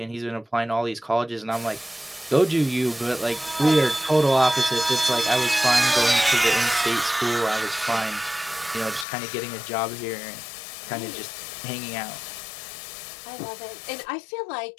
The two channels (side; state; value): right; drops out; at 9.1 s